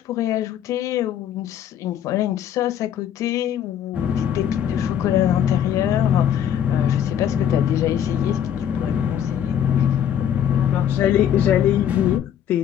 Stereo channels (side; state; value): right; quieter; 9.7 dB